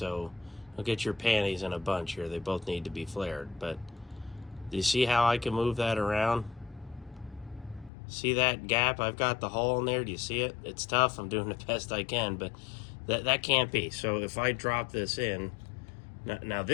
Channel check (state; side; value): drops out; right; at 7.9 s